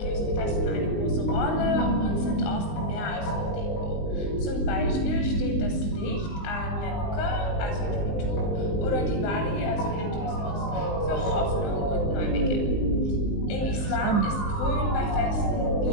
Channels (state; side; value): late; right; 19 ms